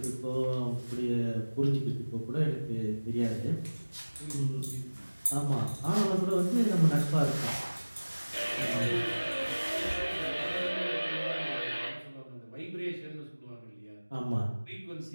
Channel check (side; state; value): both; inverted; correlation -1.00